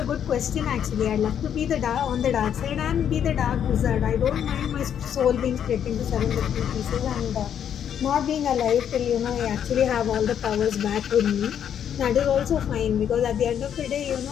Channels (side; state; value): right; quieter; 9.0 dB